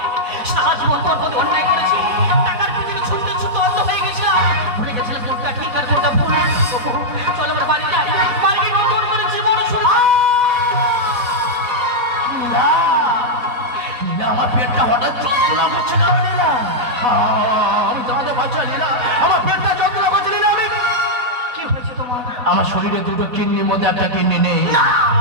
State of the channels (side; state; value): left; late; 4.1 ms